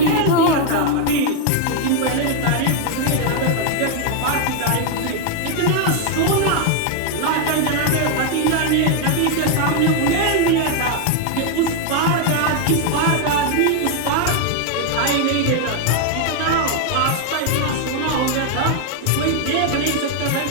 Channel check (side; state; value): both; different; correlation 0.00